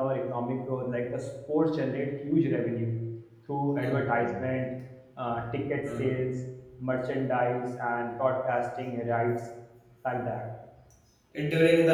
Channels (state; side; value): identical; both; correlation 1.00